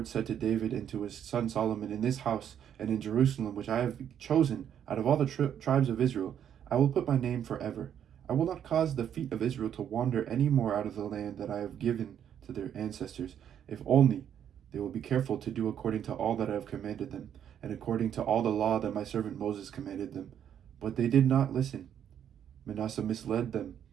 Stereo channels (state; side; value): quieter; left; 9.4 dB